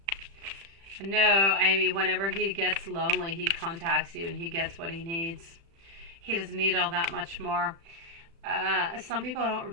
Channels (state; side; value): late; left; 36 ms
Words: No, Amy, whenever he gets lonely, he contacts you and he gets what he needs. He doesn't need all that much more. Some people don't